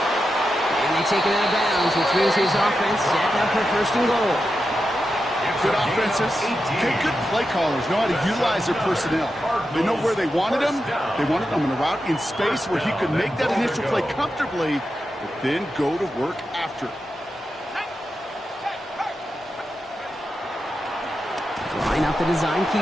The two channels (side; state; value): both; normal; correlation 0.89